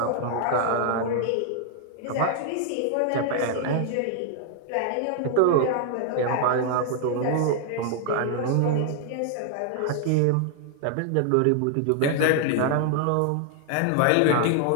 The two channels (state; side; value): different; both; correlation 0.00